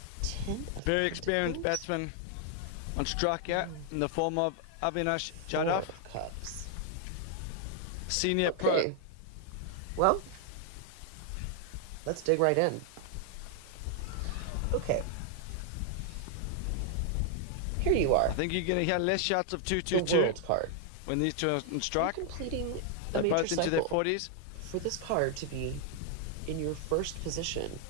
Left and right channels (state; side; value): different; both; correlation 0.00